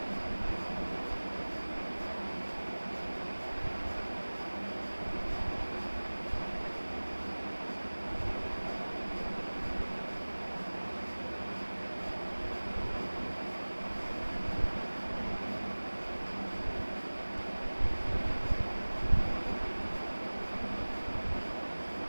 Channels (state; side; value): inverted; both; correlation -1.00